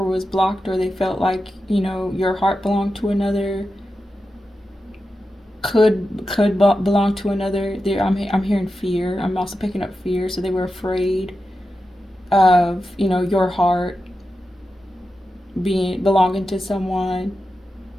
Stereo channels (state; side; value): normal; both; correlation 0.90